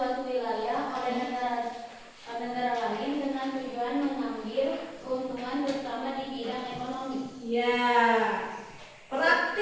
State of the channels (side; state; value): both; identical; correlation 1.00